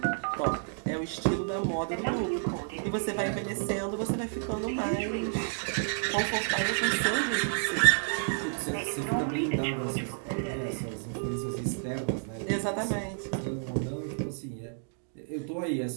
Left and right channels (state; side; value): silent; left; digital silence